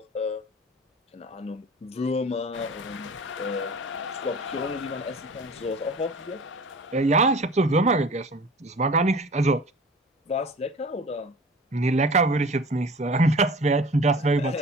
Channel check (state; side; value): normal; both; correlation 0.42